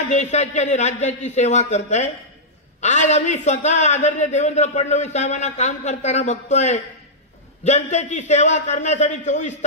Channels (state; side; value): normal; both; correlation -0.11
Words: देशाची आणि राज्याची सेवा करताय, आज आम्ही स्वतः आदरणीय देवेंद्र फडणवीस साहेबांना काम करताना बघतोय. जनतेची सेवा करण्यासाठी 24